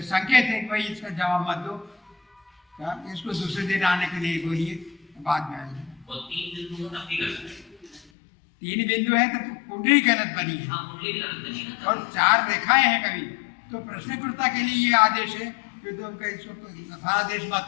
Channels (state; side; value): drops out; right; at 8.0 s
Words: है कि भाई इसका जवाब मत दो, इसको दूसरे दिन आने के लिए बोलिए, बाद में आएंगे। और 3 बिंदु हो तब भी गलत है। 3 बिंदु है तो कुंडली गलत बनी है। हाँ, कुंडली भी गलत बनी है। और 4 रेखाएं हैं कभी तो प्रश्नकर्ता के लिए ये आदेश है कि तुम इसको आदेश